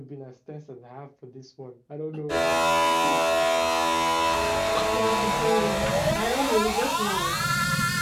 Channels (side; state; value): both; identical; correlation 1.00